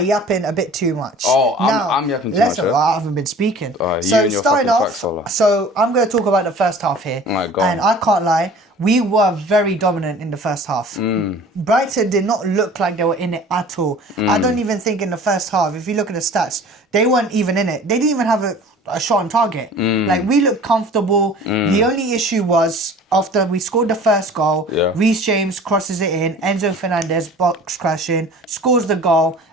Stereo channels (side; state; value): both; normal; correlation 0.45